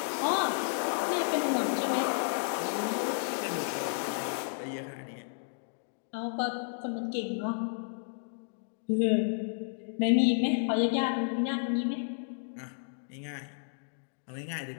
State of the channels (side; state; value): right; silent; digital silence